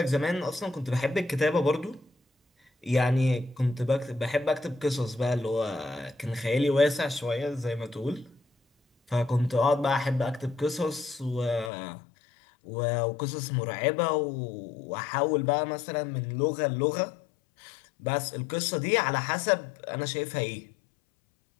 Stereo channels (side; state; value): right; drops out; at 11.7 s